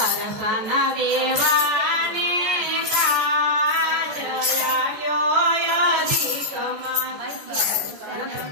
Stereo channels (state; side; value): late; left; 14 ms